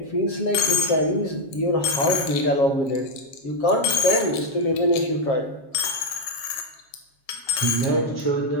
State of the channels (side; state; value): right; late; 7.4 ms